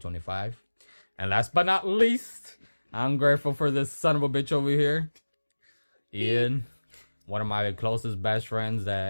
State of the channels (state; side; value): inverted; both; correlation -1.00